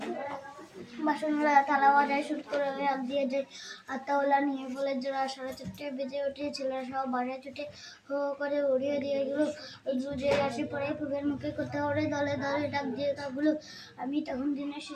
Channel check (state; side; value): identical; both; correlation 1.00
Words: বাসনগুলো থালা বাজায় শুট করে রাখ দিয়ে যে আত্মাওয়ালা নিয়ে ফলের জোড়া 4:30 বেজে ওঠে ছেলেরা সব বাসায় ছুটে হো করে উড়িয়ে দিয়ে গেলো রোদে আসে পড়ে পুবের মুখে কোথাও ওড়ে দলে দলে ডাক দিয়ে কাকগুলো আমি তখন দিনের